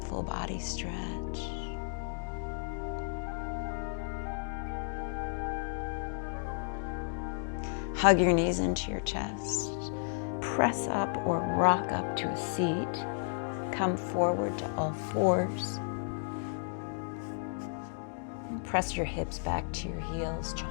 full body stretch. Hug your knees into your chest. Press up or rock up to a seat. Come forward to all fours. And press your hips back to your heels,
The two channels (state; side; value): silent; right; digital silence